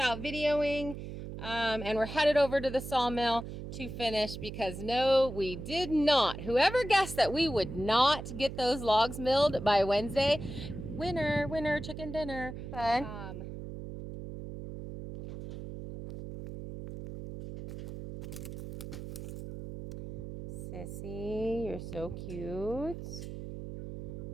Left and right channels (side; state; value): right; noise; hum, 9 dB below the sound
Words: videoing, and we're headed over to the sawmill to finish because no, we did not. Whoever guessed that we would not get those logs milled by Wednesday, winner, winner, chicken dinner. Fun. Sissy, you're so cute.